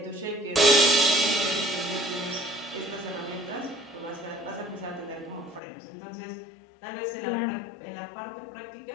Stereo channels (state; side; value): drops out; right; at 5.6 s